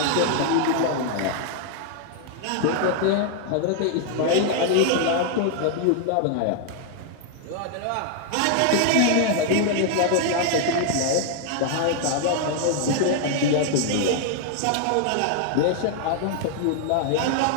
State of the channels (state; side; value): different; both; correlation 0.00